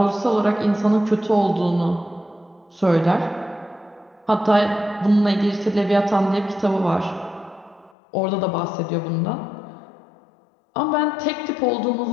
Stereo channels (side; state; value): right; drops out; at 7.9 s